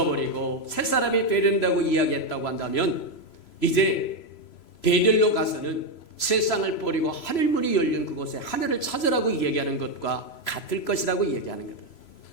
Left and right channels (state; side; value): late; right; 3.0 ms